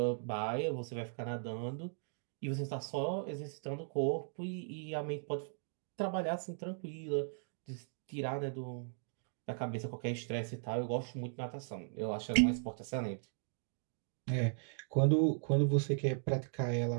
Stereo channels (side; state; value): left; silent; digital silence